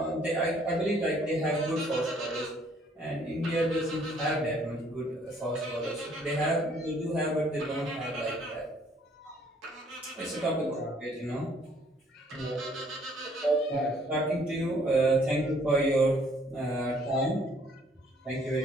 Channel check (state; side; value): normal; both; correlation 0.62